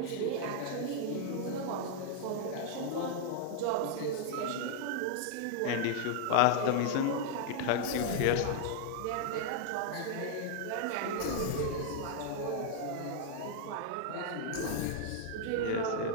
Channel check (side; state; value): both; different; correlation -0.01